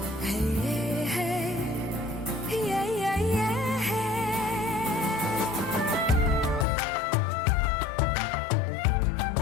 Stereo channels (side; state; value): right; drops out; at 6.7 s